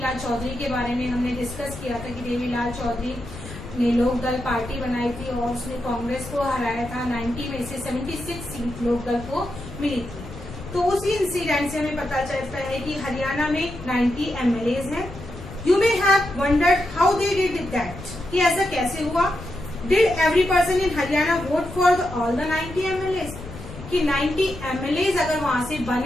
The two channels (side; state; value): left; noise; rumble, 13 dB below the sound